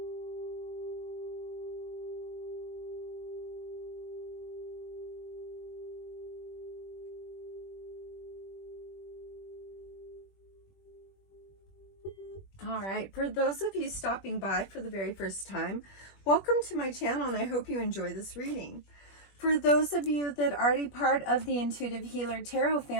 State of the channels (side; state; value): right; late; 21 ms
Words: All right, for those of you stopping by for the very first time, welcome to my channel, and I hope you enjoy this reading. For those of you that are already part of the Intuitive Healer Tarot